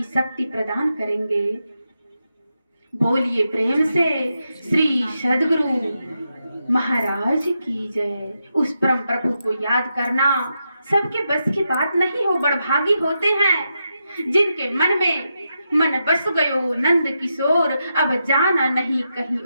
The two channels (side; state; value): both; inverted; correlation -0.85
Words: शक्ति प्रदान करेंगे। बोलिए प्रेम से श्री सद्गुरु महाराज की जय। उस परम प्रभु को याद करना सबके बस की बात नहीं हो। बड़भागी होते हैं जिनके मन में मन बस गयो नंद किशोर, अब जाना नहीं कहीं